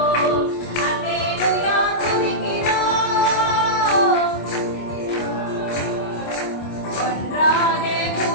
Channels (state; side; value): late; right; 25 ms